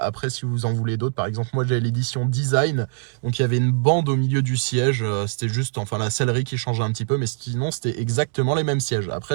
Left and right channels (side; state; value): left; silent; 64 dB below the other